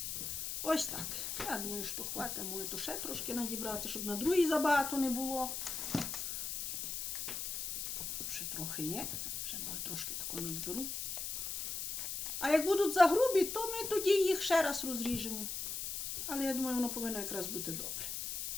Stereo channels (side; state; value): left; noise; hiss, 4 dB below the sound